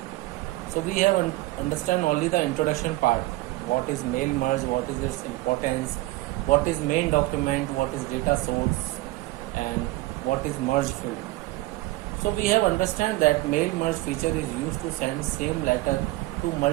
So we have understand only the introduction part. What is mail merge? What is its importance? What is main document? What is data source? And what is merge field? So we have understand that mail merge feature is used to send same letter to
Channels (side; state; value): left; quieter; 19.1 dB